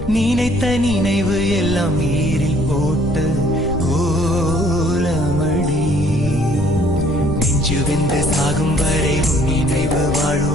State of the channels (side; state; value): left; noise; rumble, 9 dB below the sound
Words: நினைத்த நினைவு எல்லாம் நீரில் போட்ட கோலமடி. நெஞ்சு வெந்து சாகும் வரை உன் நினைவு